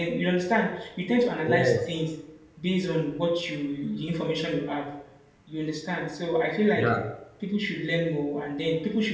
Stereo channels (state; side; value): identical; both; correlation 1.00